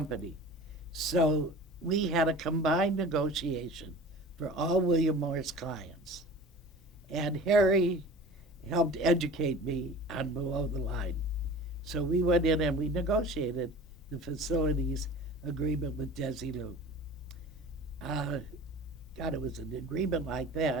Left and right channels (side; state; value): both; normal; correlation 0.40